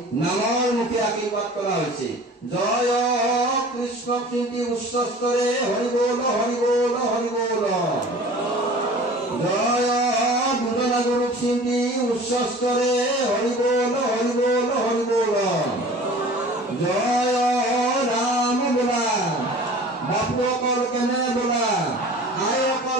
নামৰ মুখে আশীৰ্বাদ কৰা হৈছে। জয় কৃষ্ণ কীৰ্তি উচ্চস্তৰে হৰি বল হৰি বল হৰি বল। জয় দুজনা গুৰু কীৰ্তি উচ্চস্তৰে হৰি বল হৰি বল হৰি বল। জয় ৰাম বোলা, বাপুকৰ কেনে বোলা, আয়কৰ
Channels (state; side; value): normal; both; correlation 0.43